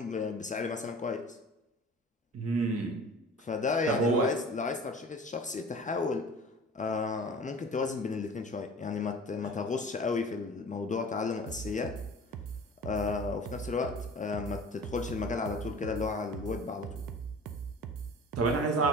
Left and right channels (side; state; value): both; normal; correlation 0.42